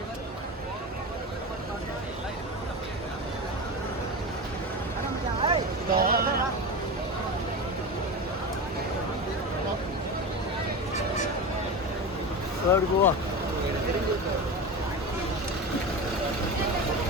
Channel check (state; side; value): normal; both; correlation 0.24